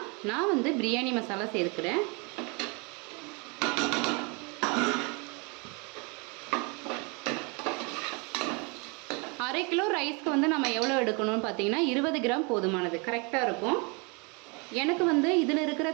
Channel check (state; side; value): quieter; left; 31.3 dB